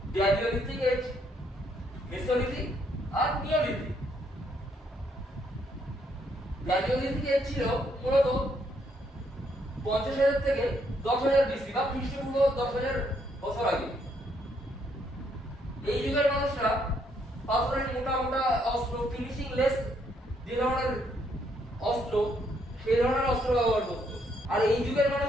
গ্ল্যাডিওলিথিক এজ, মেসোলিথিক আর নিওলিথিক। গ্ল্যাডিওলিথিক এজ ছিল মূলত 50,000 থেকে 10,000 বিসি বা খ্রিস্টপূর্ব 10,000 বছর আগে। এই যুগের মানুষরা পাথরের মোটা মোটা অস্ত্র, ফিনিশিং লেস যে ধরনের অস্ত্র, সেই ধরনের অস্ত্র ব্যবহার করত। আর এই যুগের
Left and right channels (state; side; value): normal; both; correlation 0.72